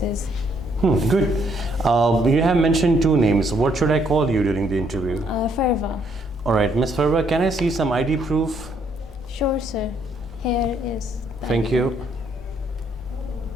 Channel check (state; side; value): normal; both; correlation 0.70